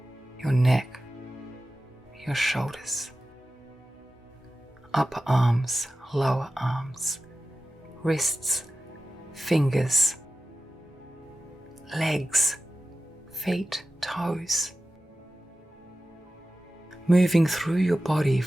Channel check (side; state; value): both; normal; correlation 0.93